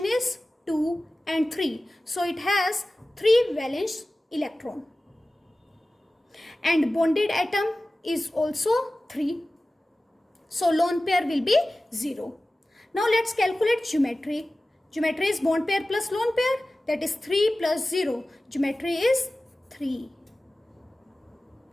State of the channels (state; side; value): normal; both; correlation 0.96